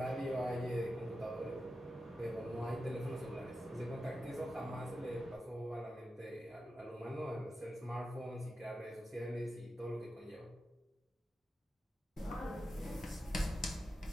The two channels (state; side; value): normal; both; correlation 0.91